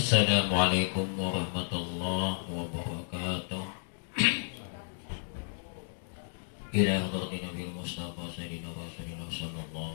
Assalamualaikum warahmatullahi wabarakatuh. Ila hadratin Nabi Mustafa Sayyidina Rasulullah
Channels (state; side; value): silent; right; digital silence